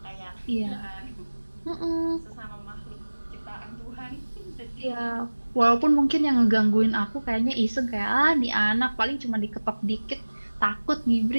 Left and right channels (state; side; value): inverted; both; correlation -1.00